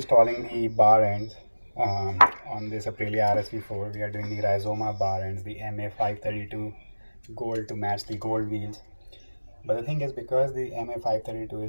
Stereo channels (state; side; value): inverted; both; correlation -1.00